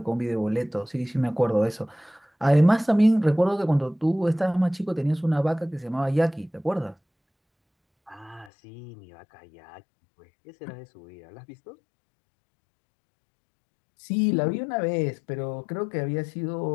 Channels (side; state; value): right; drops out; at 8.5 s